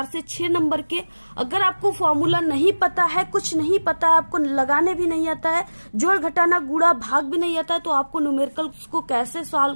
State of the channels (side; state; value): both; inverted; correlation -1.00